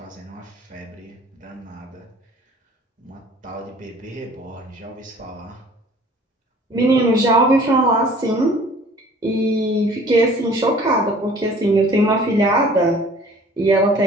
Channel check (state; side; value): normal; both; correlation 0.51